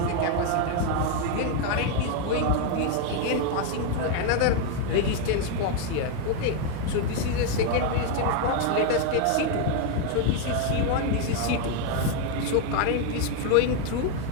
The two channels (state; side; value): different; both; correlation 0.01